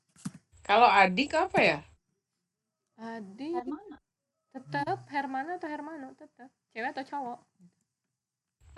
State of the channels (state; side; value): identical; both; correlation 1.00